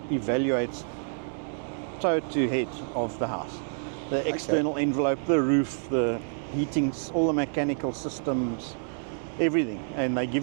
evaluates toe to head of the house. The external envelope, the roof, the heating, all the mechanical systems, everything. And they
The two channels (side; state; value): left; silent; digital silence